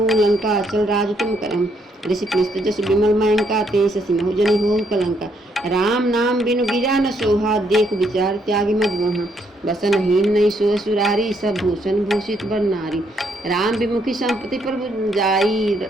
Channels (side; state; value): both; normal; correlation 0.72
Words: लंका चल राज तुम करम। ऋषि पुलिस्त जस विमल मयंका ते ससिमहु जनि हो कलंका। राम नाम बिनु गिरा न सोहा देख विचार त्यागी मद मोहा। बसनहीन नहीं सो सुरारी सब भूषण भूषित बर नारी। राम विमुखी संपत्ति पर जाई